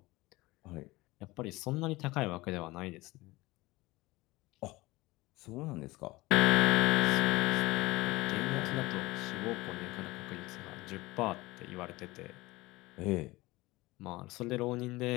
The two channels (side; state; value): right; quieter; 20.6 dB